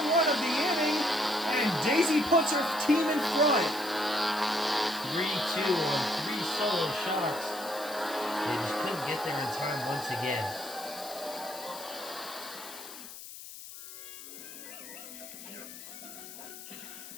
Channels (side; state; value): left; noise; hiss, 13 dB below the sound